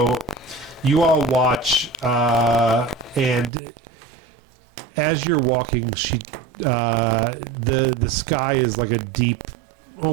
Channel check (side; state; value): left; drops out; at 3.5 s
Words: you all watch, and as you're walking, the sky is like a deep